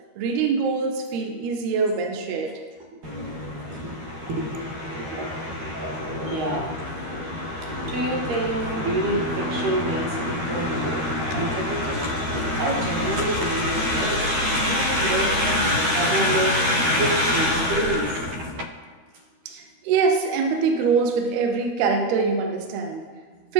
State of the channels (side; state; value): left; late; 13 ms